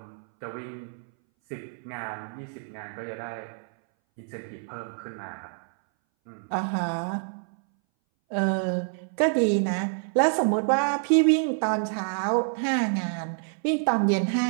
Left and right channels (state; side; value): silent; left; 59 dB below the other